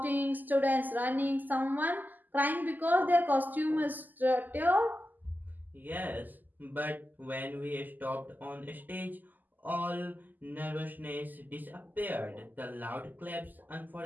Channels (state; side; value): late; left; 0.085 ms